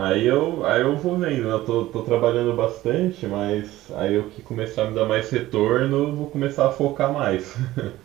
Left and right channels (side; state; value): left; quieter; 16.1 dB